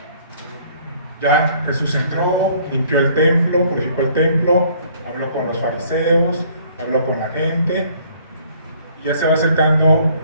Ya Jesús entró, limpió el templo, purificó el templo, habló con los fariseos, habló con la gente, y ya se va acercando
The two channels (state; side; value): inverted; both; correlation -0.59